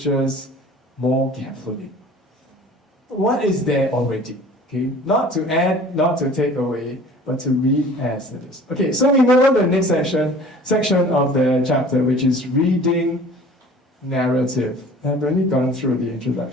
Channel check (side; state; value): both; normal; correlation 0.47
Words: more carefully. What is there already? Okay, not to add, not to take away, but to read as it is. Okay, so we move on to the next section of the chapter, which is reading narrative. I've already gone through the